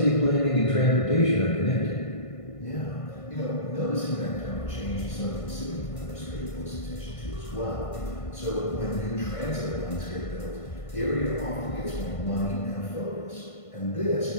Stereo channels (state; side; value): late; right; 1.5 ms